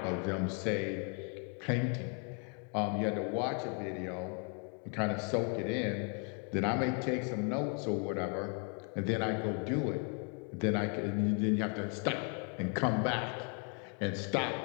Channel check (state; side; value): quieter; right; 36.8 dB